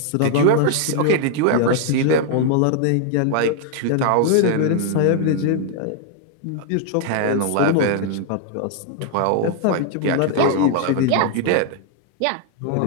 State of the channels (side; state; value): both; different; correlation 0.00